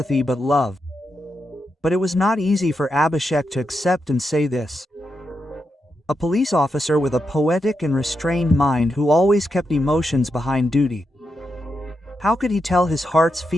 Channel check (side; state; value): both; normal; correlation 0.85